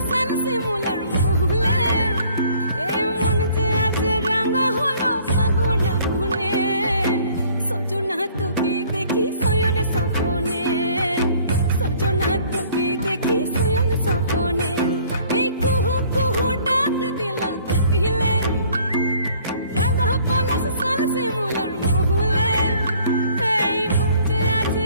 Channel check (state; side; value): inverted; both; correlation -0.56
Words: সাল শিমুলার মহুলে এই মন যে আজ রঙ হলো ফাগুন আগুনে সজনা তোকে দেখি শয়নে স্বপনে সজনা তোকে দেখি শয়নে স্বপনে এই কুহু কুহু ডাক দিলা কোকিলে রঙ পলাশ সাল শিমুলার মহুলে এই মন যে আজ